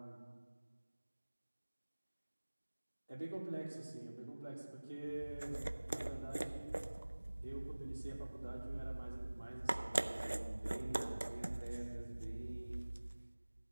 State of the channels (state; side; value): inverted; both; correlation -1.00